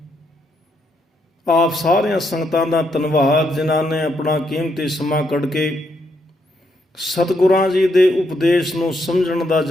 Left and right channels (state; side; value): normal; both; correlation 0.77